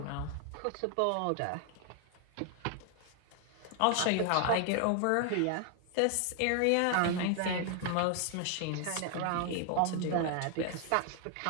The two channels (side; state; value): both; different; correlation 0.00